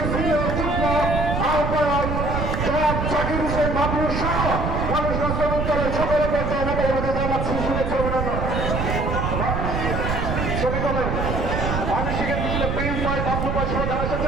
যুগ্ম আহ্বায়ক জনাব জাকির হোসেন বাবুর সহ মানুষরা শ্রমিক দলের সকলে পর্যায়ে নেতার মধ্যে জানাচ্ছি শুভেচ্ছা অভিনন্দন। শ্রমিক দলের মানসিকের মিছিলে প্রিন্স ভাই বাবলু ভাই সহ যারা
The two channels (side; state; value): right; noise; rumble, 1 dB below the sound